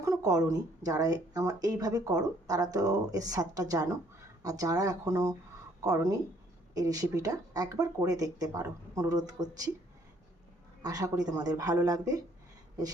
এখনও করোনি, যারা আমার এইভাবে করো তারা তো এর স্বাদটা জানো। আর যারা এখনও করোনি এই রেসিপিটা একবার করে দেখতে পারো, অনুরোধ করছি। আশা করি তোমাদের ভালো লাগবে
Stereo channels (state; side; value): normal; both; correlation 0.63